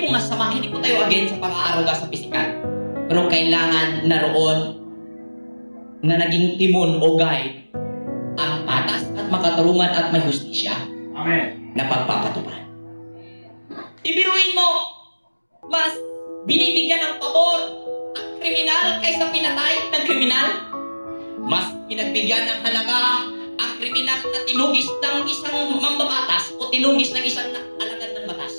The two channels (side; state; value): both; inverted; correlation -1.00